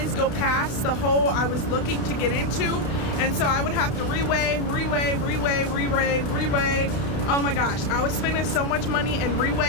go past the hole I was looking to get into, and so I would have to reweigh. Oh my gosh, I was spending so much money in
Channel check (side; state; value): right; late; 32 ms